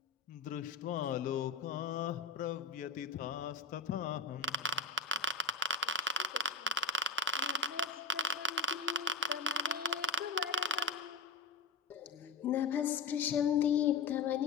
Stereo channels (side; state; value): right; quieter; 3.8 dB